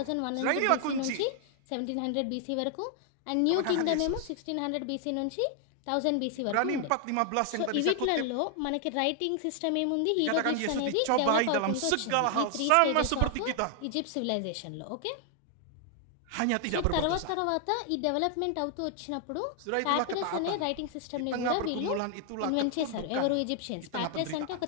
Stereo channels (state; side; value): different; both; correlation 0.00